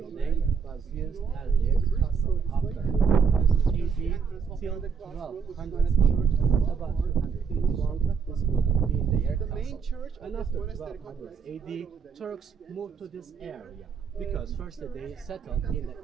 was used as their castle after 1000 AD till 1200 church, about 200 years long. This building being their castle. And after 1200 AD, Turks moved to this area, because first they settled in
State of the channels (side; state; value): left; quieter; 6.0 dB